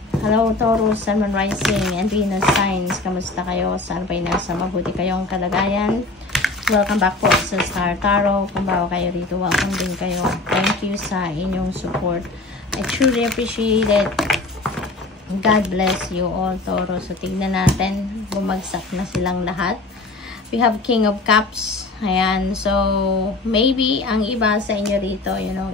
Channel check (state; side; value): quieter; right; 3.3 dB